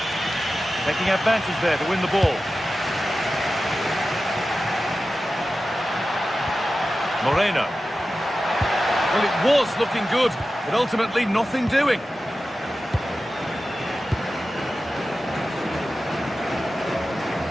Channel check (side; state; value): both; normal; correlation 0.94